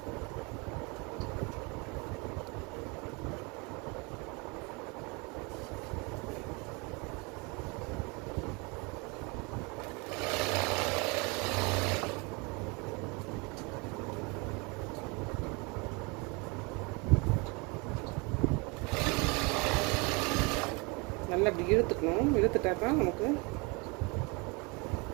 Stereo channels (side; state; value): left; quieter; 28.9 dB